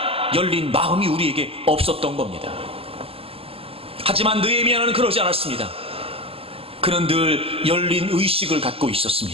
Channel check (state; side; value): late; left; 0.28 ms